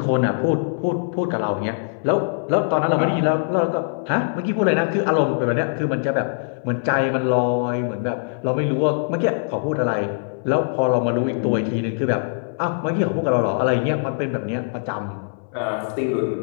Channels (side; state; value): right; silent; 64 dB below the other